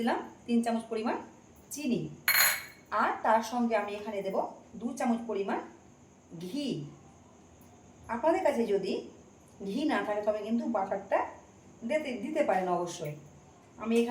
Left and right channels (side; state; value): both; identical; correlation 1.00